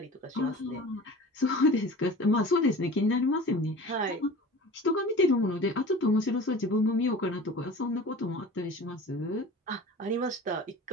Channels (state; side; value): normal; both; correlation 0.39